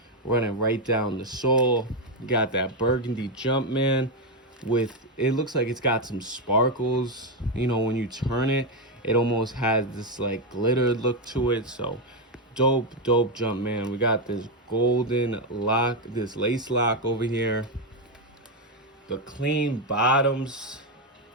running right down the sole. You got that burgundy Jumpman with, it looks like it's got some sparkles. You know, when you turn it, it almost has this like glitter look to it. So dope Jumpman. We got this golden lock, this lace lock over here. The clean bottoms,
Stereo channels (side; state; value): both; normal; correlation 0.05